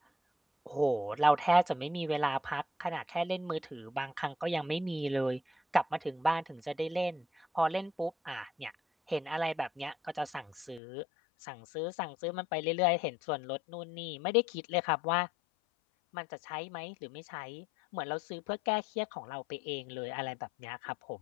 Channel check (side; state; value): right; drops out; at 10.8 s